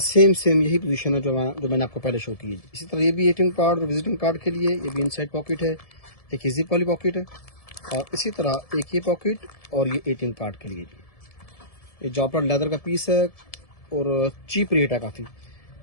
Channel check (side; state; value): right; late; 1.7 ms